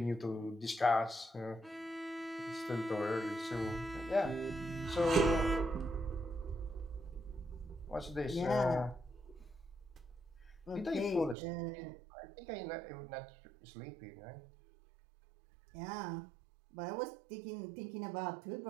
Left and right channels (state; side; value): drops out; left; at 11.4 s